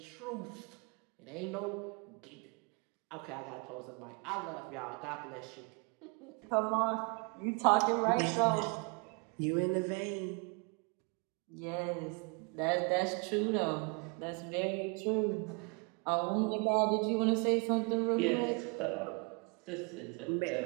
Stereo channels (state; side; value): quieter; left; 33.6 dB